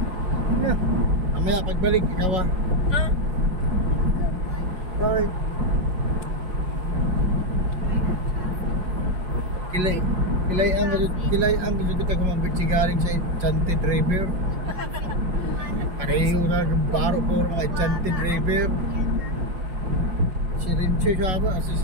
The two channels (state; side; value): late; left; 5.4 ms